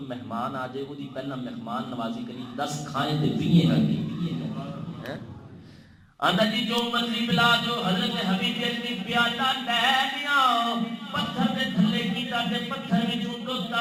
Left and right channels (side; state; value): both; identical; correlation 1.00